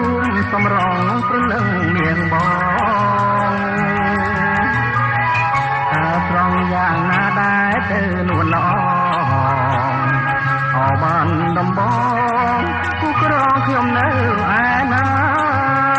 ួមសម្រងព្រលឹងនាងបងតើត្រង់យ៉ាងណាដែរទៅនួនល្អអបានដំបងគូក្រងខ្ញុំនៅឯណា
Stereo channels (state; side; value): identical; both; correlation 1.00